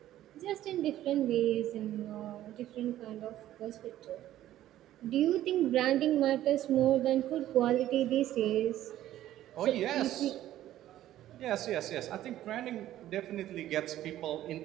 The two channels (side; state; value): left; quieter; 13.2 dB